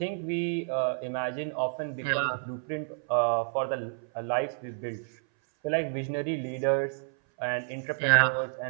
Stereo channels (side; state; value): left; silent; 58 dB below the other